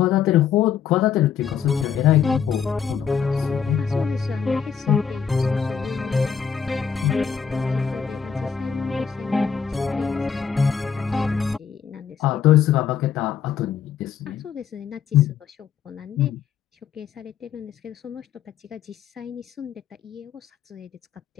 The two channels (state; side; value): quieter; right; 7.4 dB